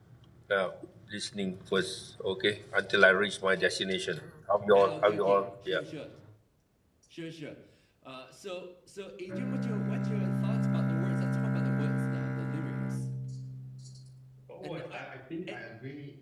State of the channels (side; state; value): both; identical; correlation 1.00